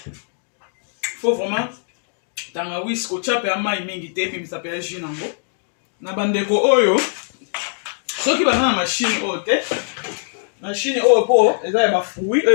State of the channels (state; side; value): silent; right; digital silence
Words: faut vraiment tangawis kotia mpe ya mai mingi te ebimisa mpe ya jus nango na bandeko oyo soki baza na mashine oyo te mashine oyo mpo eza ya bafruit